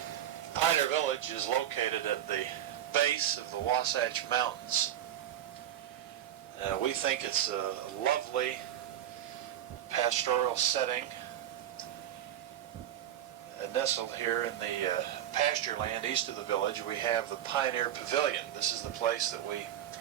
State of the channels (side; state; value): left; quieter; 11.3 dB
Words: Pioneer Village is located at the base of the Wasatch Mountains. We think it's a lovely pastoral setting, nestled here in the pasture land east of the village. We have the Pioneer Pavilion. This is the place that we